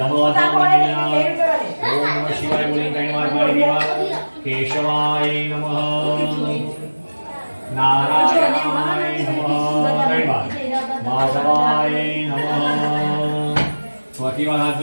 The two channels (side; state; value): both; inverted; correlation -1.00